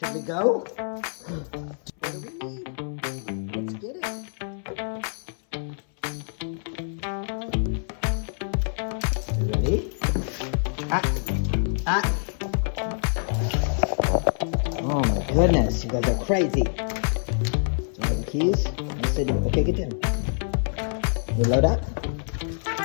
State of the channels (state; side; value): silent; right; 61 dB below the other